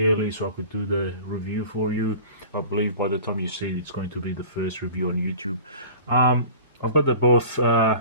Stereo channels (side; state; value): both; inverted; correlation -0.42